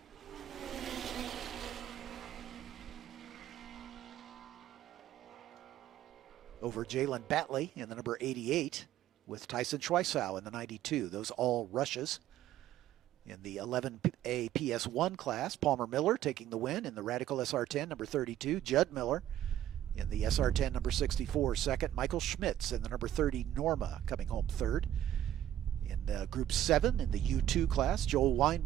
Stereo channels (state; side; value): quieter; left; 11.8 dB